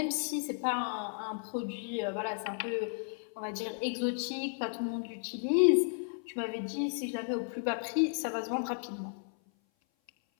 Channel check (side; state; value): right; silent; 55 dB below the other